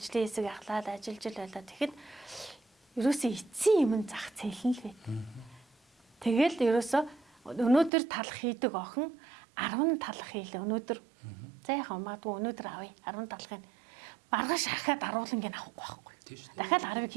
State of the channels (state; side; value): drops out; left; at 7.9 s